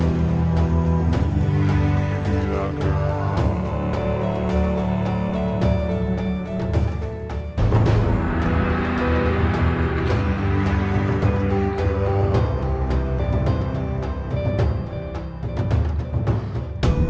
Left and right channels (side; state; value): both; identical; correlation 1.00